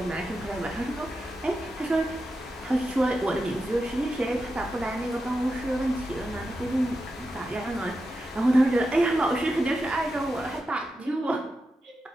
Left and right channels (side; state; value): both; normal; correlation 0.89